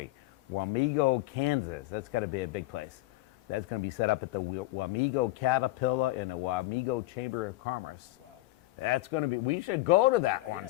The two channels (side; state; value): right; quieter; 18.7 dB